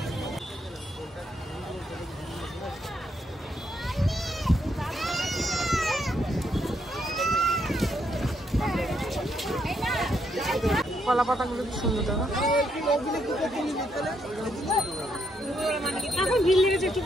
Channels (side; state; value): both; normal; correlation 0.76